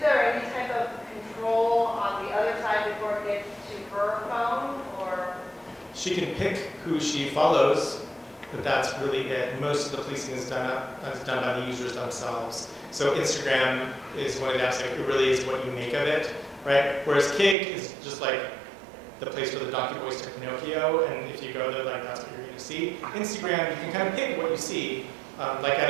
any type of control on the other side before it gets to her phone, or? She can pick who she follows, but that's really it. Most of the policing is done by the users themselves. So Instagram is one of that's like, it really is what you make of it, right? Whereas Kik is just like the place where the donkey boys took Pinocchio, and if you go there, like that's what you're going to see. Instagram, you can kind of pick what you see, like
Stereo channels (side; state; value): left; drops out; at 17.6 s